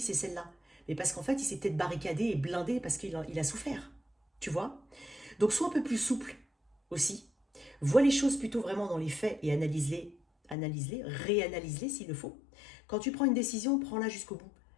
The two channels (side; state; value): right; drops out; at 10.6 s